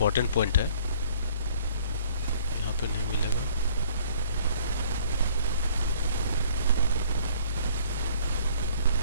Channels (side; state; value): both; inverted; correlation -0.56